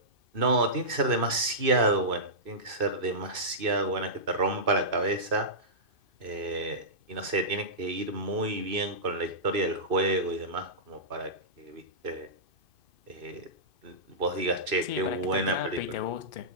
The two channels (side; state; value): left; late; 2.5 ms